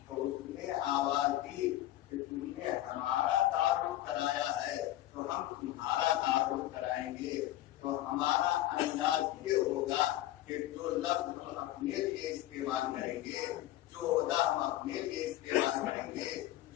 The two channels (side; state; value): right; quieter; 14.6 dB